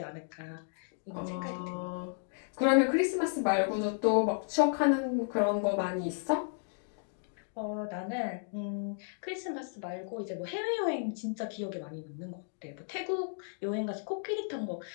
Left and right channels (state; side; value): silent; right; digital silence